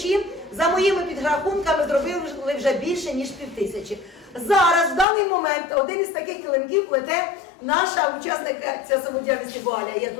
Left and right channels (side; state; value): right; drops out; at 5.1 s